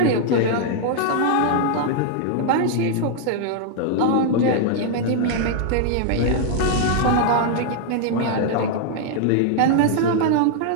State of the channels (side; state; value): both; different; correlation 0.00